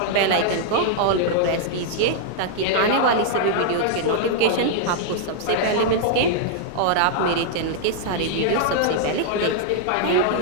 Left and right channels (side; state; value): both; different; correlation -0.01